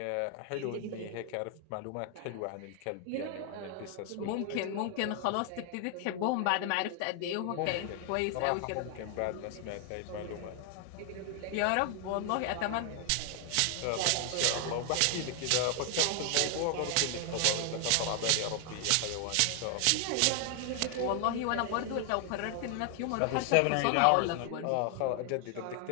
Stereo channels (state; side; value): different; both; correlation 0.00